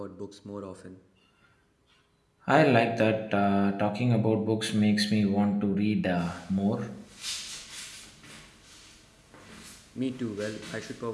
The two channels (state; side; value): identical; both; correlation 1.00